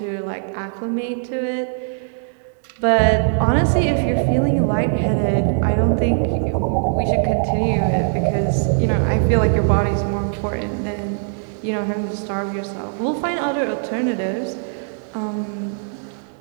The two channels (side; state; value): left; silent; digital silence